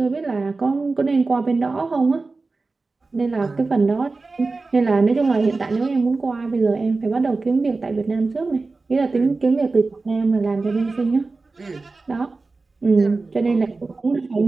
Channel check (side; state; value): left; quieter; 3.7 dB